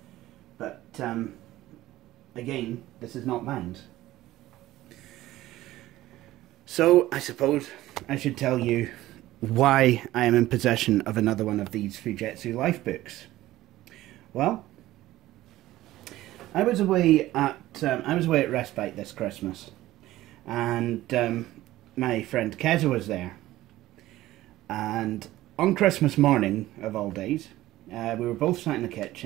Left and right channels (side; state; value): left; quieter; 15.9 dB